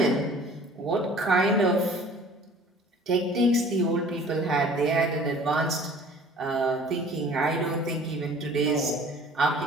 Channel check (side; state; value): both; normal; correlation 0.49